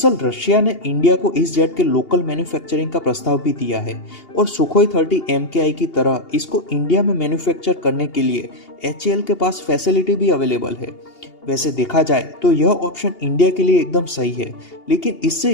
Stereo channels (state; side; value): late; right; 2.8 ms